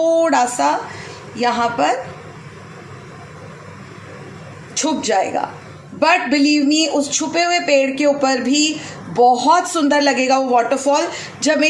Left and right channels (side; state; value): both; identical; correlation 1.00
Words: सा यहाँ पर छुप जाएगा. बट बिलीव मी, उस छुपे हुए पेड़ के ऊपर भी बहुत सुंदर लगेगा वो वाटरफॉल. जब